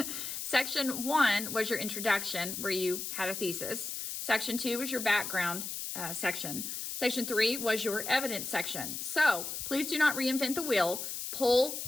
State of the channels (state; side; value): noise; left; hiss, 5 dB below the sound